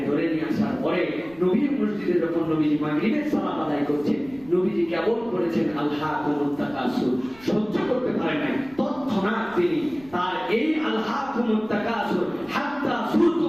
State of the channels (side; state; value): right; noise; rumble, 25 dB below the sound